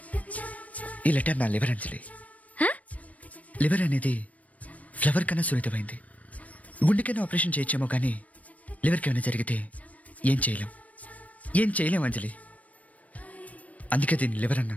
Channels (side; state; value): right; late; 0.069 ms